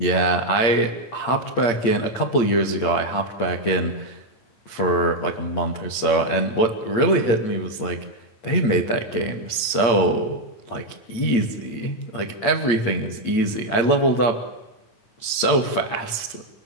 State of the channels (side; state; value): right; late; 8.8 ms